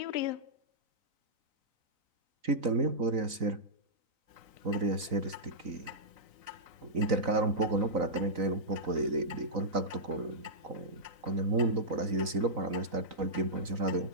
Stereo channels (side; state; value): left; late; 3.9 ms